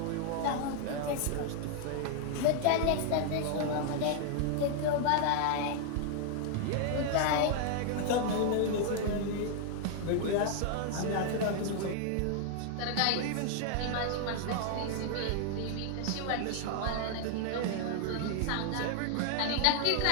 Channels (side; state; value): both; different; correlation 0.00